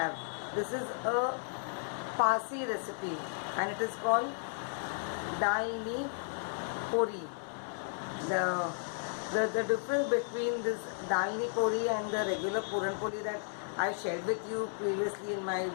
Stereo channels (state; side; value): silent; right; digital silence